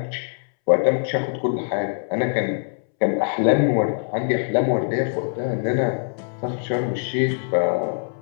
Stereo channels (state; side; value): silent; right; 64 dB below the other